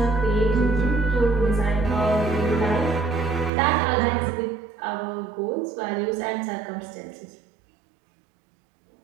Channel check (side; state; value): left; drops out; at 3.5 s